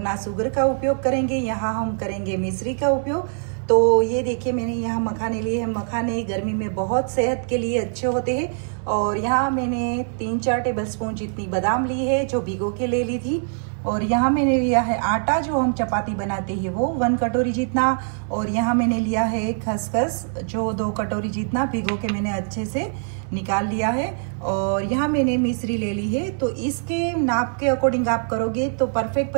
ना शुगर का उपयोग करेंगे, यहाँ हम करेंगे मिश्री का उपयोग। तो ये देखिए मैंने यहाँ मखाने लिए हैं। मखाने गर्मी में बहुत सेहत के लिए अच्छे होते हैं। और यहाँ मैंने 3-4 टेबल स्पून जितनी बादाम ली है जो भिगो के ले ली थी। और यहाँ मैंने लिया है आटा जो हम चपाती बनाते हैं वो 1 कटोरी जितना। और यहाँ मैंने लिया है खसखस जो 2 कटोरी जितना भिगो के मैंने अच्छे से निकाल लिया है। और यहाँ मैंने मिश्री ले ली है। तो इसके नाप के अकॉर्डिंग आप करोगे तो परफेक्ट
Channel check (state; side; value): silent; left; 63 dB below the other